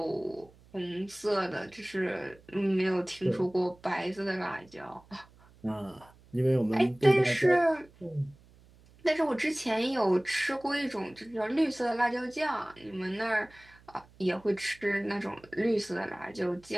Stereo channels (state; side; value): noise; right; hum, 26 dB below the sound